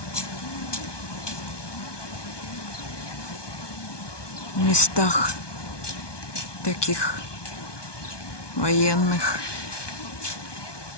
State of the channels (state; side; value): late; right; 1.2 ms